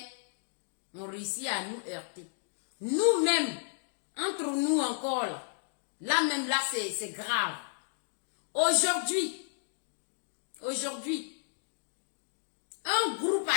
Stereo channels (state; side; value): silent; right; digital silence